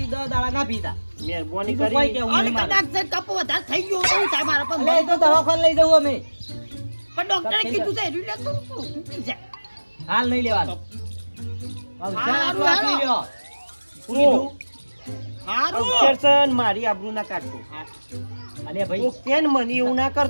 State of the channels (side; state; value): both; inverted; correlation -1.00